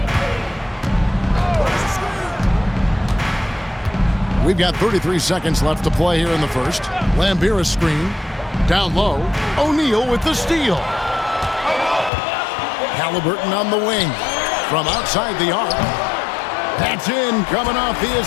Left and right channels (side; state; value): right; drops out; at 12.1 s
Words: We've got 33 seconds left to play here in the first. Lambier a screen. Down low. O'Neal with the steal. Halliburton on the wing. From outside the arc. That's in, coming off the